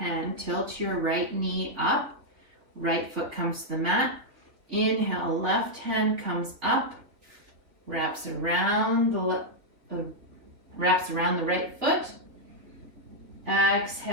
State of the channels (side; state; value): left; late; 3.3 ms